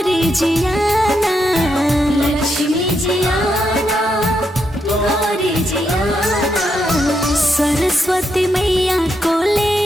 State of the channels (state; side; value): normal; both; correlation 0.81